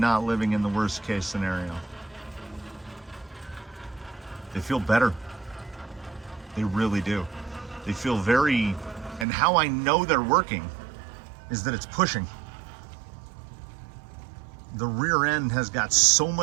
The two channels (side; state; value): left; drops out; at 9.2 s